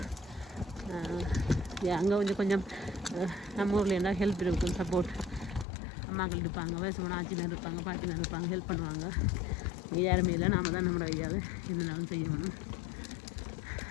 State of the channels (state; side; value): drops out; right; at 5.7 s